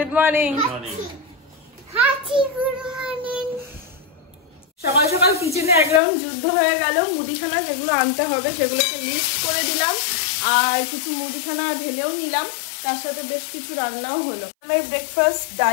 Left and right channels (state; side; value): drops out; right; at 6.0 s